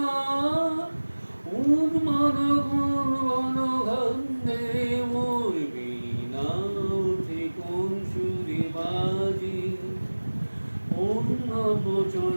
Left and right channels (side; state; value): both; inverted; correlation -1.00